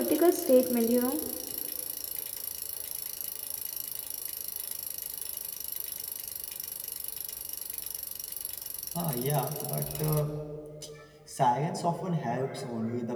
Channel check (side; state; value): both; identical; correlation 1.00